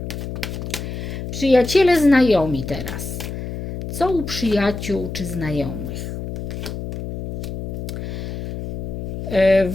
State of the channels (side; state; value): left; noise; hum, 6 dB below the sound